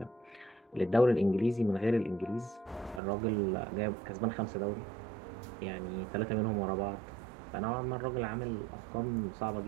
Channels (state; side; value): drops out; left; at 3.0 s